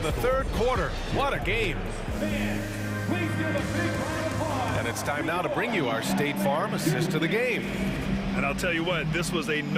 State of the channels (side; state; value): both; identical; correlation 1.00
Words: the third quarter. What a game. And it's time now to bring you our State Farm assist of the game. And I'll tell you what, this was a